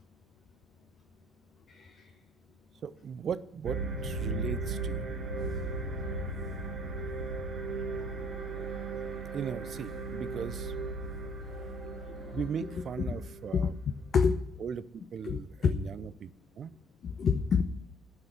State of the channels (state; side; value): normal; both; correlation 0.58